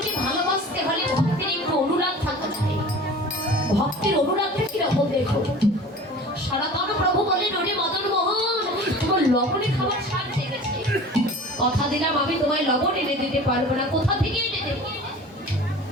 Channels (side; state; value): both; normal; correlation 0.40